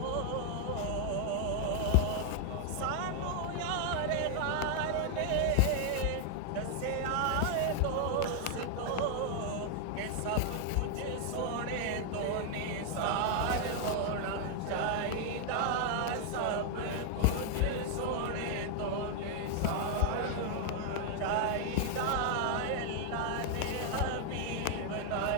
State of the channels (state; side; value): different; both; correlation 0.00